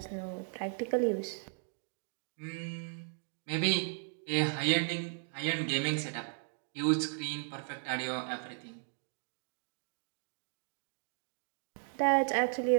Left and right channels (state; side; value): silent; left; digital silence